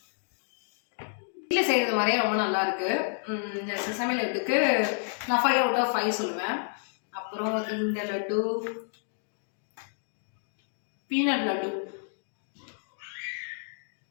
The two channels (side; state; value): right; silent; digital silence